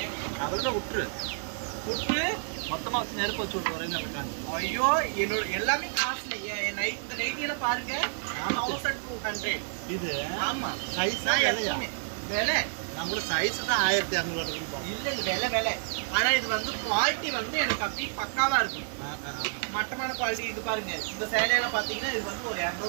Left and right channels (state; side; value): silent; left; digital silence